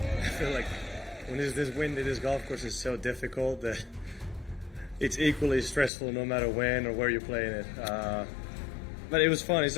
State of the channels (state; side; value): drops out; right; at 5.9 s